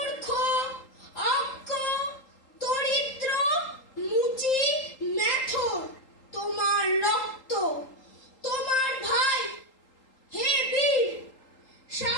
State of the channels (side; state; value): right; late; 3.8 ms